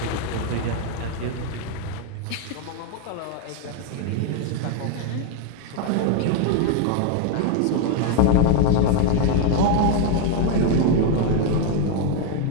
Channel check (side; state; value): both; different; correlation 0.00